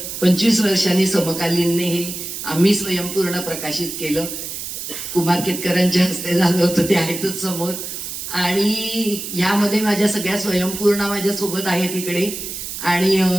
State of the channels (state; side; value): noise; right; hiss, 7 dB below the sound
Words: 25 वर्षांनी समकालीनने हे आम्ही स्वयंपूर्ण प्रकाशित केलं. कुमार केतकरांच्या हस्ते झालं होतं, ते आहेतच समोर. आणि ह्यामध्ये माझ्या सगळ्या स्वयंपूर्णा माझ्यासोबत आहेत इकडे. आणि